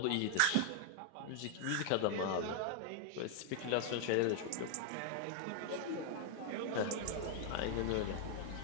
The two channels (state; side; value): different; both; correlation 0.00